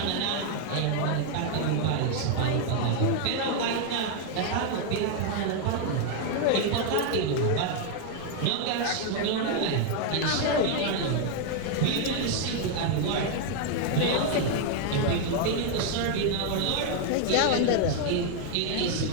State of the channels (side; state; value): both; different; correlation 0.00